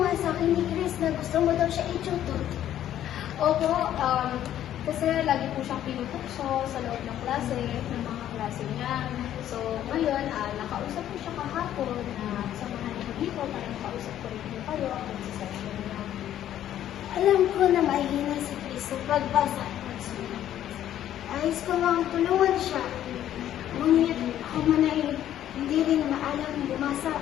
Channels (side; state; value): right; quieter; 11.6 dB